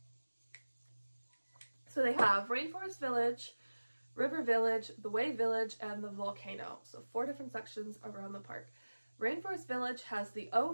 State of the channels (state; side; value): inverted; both; correlation -1.00